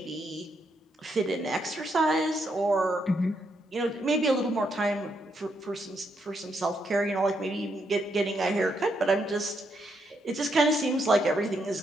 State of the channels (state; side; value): normal; both; correlation 0.78